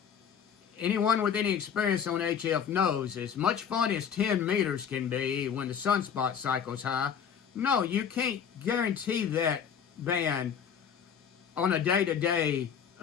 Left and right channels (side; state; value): right; quieter; 7.6 dB